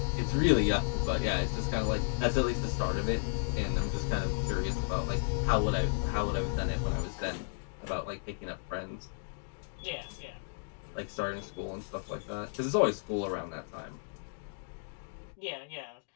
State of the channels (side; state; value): right; silent; digital silence